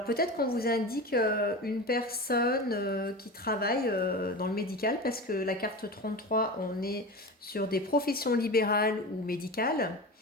peut-être qu'on vous indique une personne qui travaille dans le médical, parce que la carte 33, on est sur des professions libérales ou médicales,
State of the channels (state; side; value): normal; both; correlation 0.28